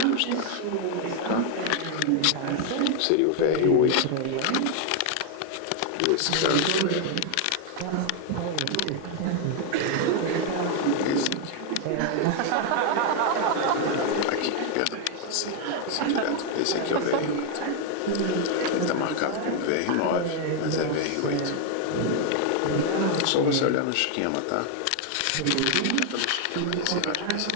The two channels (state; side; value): different; both; correlation 0.00